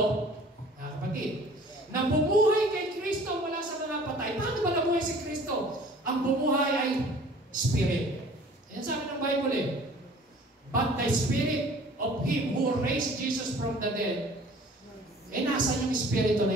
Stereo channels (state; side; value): normal; both; correlation 0.49